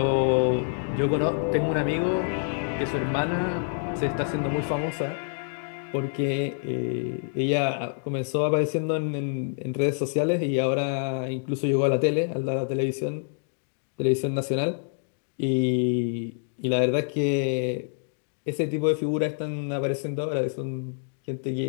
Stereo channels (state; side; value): silent; right; digital silence